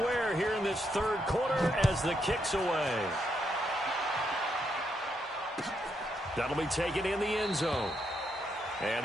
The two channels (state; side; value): normal; both; correlation 0.79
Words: here in this 3rd quarter as the kick's away. That'll be taken in the end zone.